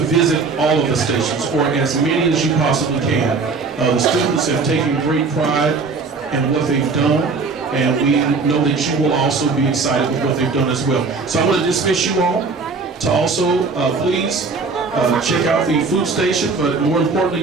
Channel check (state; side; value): quieter; left; 4.4 dB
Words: all of the stations, or as many as you possibly can. The students have taken great pride in what they've done, and we know that you will also be excited with what they've done as well. So I'm going to dismiss you all to also please check out the food station, but more